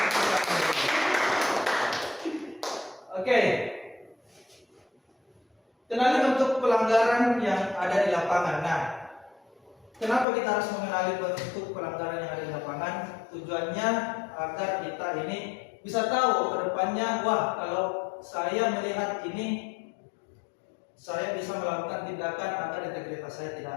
Oke. Kenali bentuk pelanggaran yang ada di lapangan. Nah, kenapa kita harus mengenali bentuk pelanggaran yang ada di lapangan? Tujuannya agar kita ini bisa tahu ke depannya, wah kalau saya melihat ini, saya bisa melakukan tindakan agar integritas saya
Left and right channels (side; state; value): right; drops out; at 10.2 s